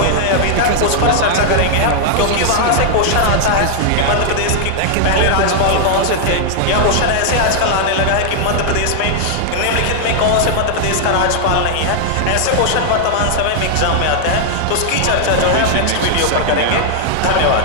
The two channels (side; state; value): both; different; correlation -0.01